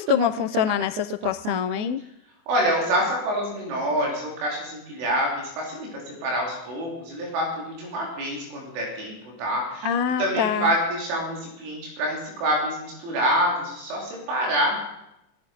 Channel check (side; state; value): left; late; 24 ms